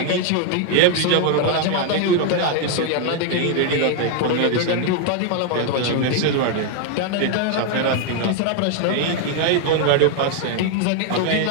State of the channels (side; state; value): both; different; correlation 0.01